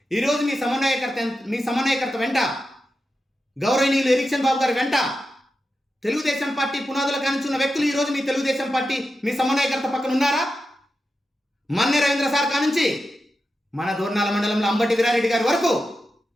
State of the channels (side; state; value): both; normal; correlation 0.90